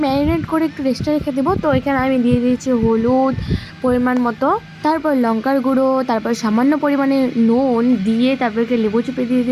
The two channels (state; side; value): identical; both; correlation 1.00